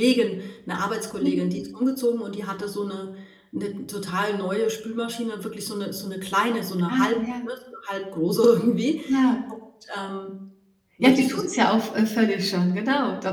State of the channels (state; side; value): identical; both; correlation 1.00